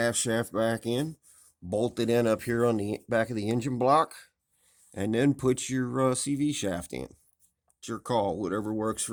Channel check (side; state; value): both; identical; correlation 1.00